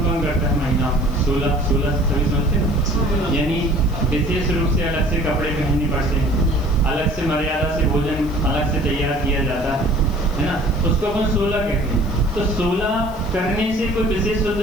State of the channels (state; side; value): noise; left; hiss, 24 dB below the sound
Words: कौन करता है महीना? 16 सभी समझते हैं। यानी विशेष रूप से अलग से कपड़े पहनने पड़ते हैं, अलग से मर्यादा से भोजन अलग से तैयार किया जाता है ना, उसको अपन 16 कहते हैं। तो 16 करने से कोई विशेष